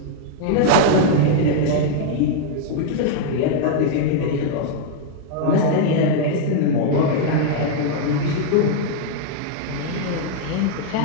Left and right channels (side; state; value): both; different; correlation 0.00